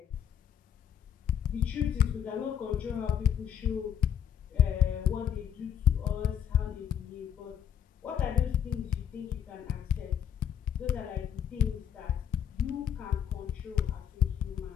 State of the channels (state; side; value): quieter; right; 9.3 dB